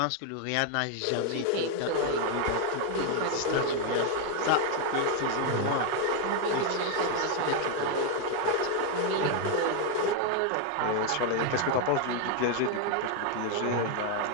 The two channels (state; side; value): different; both; correlation 0.01